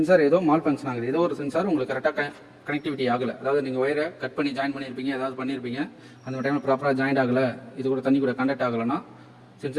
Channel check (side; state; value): both; identical; correlation 1.00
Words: ஏதோ மால் ஃபங்க்ஷன் ஆகுது. ஏதோ ஒரு சென்சார் உங்களுக்கு கரெக்டாக கனெக்டிவிட்டி ஆகலை. அதாவது நீங்கள் ஒயரை கட் பண்ணி ஜாயின் பண்ணியிருப்பீங்க, ஏதாவது பண்ணியிருப்பீங்க, அந்த டைமில் ப்ராப்பராக ஜாயின் ஆகலை, இது கூட தண்ணி கூட கண்டக்ட் ஆகலைன்னா,